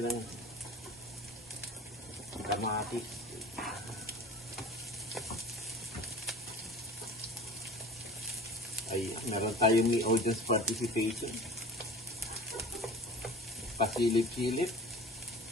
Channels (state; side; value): normal; both; correlation 0.40